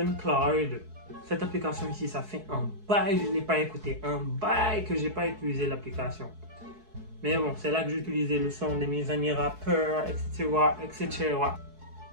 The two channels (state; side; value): late; left; 4.7 ms